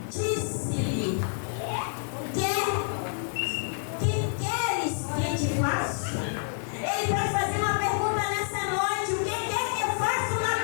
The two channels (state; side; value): silent; right; digital silence